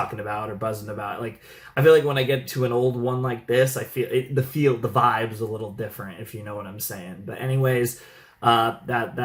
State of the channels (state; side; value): identical; both; correlation 1.00